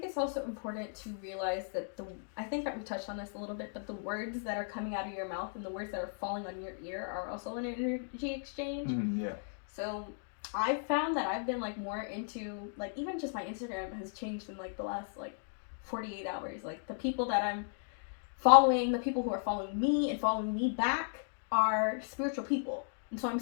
it's also important to realize that I think that we touched on this a little bit, but the words that are coming out of your mouth and the words that are falling on your ear are also an energy exchange. Yeah. So I've found that I've been like more into, like, even just my Instagram has changed in like the last like 48 hours. Like the people that I'm following, the people who are following me and following me back are spiritual people. And so I'm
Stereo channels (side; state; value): right; silent; digital silence